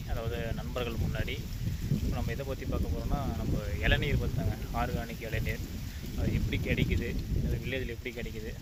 அதாவது நண்பர்கள் முன்னாடி. இப்போ நம்ம எதை பற்றி பார்க்க போகிறோன்னா நம்ம இளநீர் பார்த்தாங்க, ஆர்கானிக் இளநீர். அது எப்படி கிடைக்குது, அது வில்லேஜில் எப்படி கிடைக்குது,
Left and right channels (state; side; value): identical; both; correlation 1.00